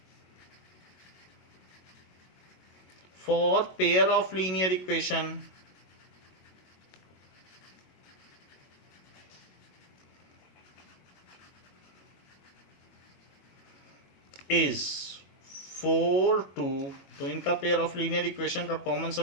for pair of linear equation is 4 2. तो इनका पेयर ऑफ लीनियर इक्वेशन का कॉमन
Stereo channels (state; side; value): late; right; 22 ms